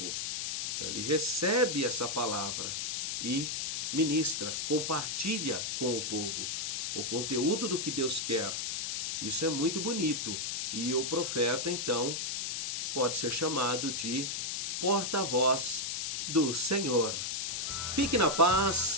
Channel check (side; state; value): left; noise; hiss, 2 dB below the sound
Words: Ele recebe essa palavra e ministra, compartilha com o povo o conteúdo do que Deus quer. Isso é muito bonito. E o profeta então pode ser chamado de porta-voz do Senhor. Fique na